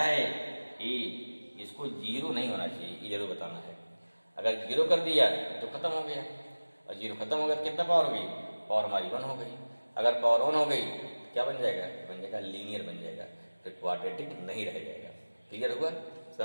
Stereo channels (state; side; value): inverted; both; correlation -1.00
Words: a, इसको 0 नहीं होना चाहिए, ये जरूर बताना है। अगर 0 कर दिया तो खत्म हो गया, और 0 खत्म हो गया तो कितना पावर हो गई, पावर हमारी 1 हो गई। अगर पावर 1 हो गई तो क्या बन जाएगा, बन जाएगा लीनियर बन जाएगा, फिर क्वाड्रेटिक नहीं रह जाएगा। क्लियर हुआ,